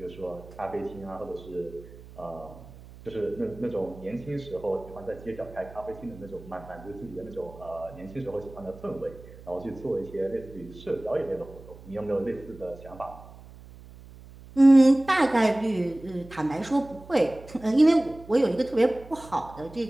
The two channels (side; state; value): right; noise; hum, 19 dB below the sound